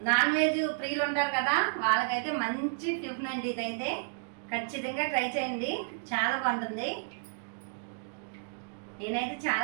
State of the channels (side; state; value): left; silent; digital silence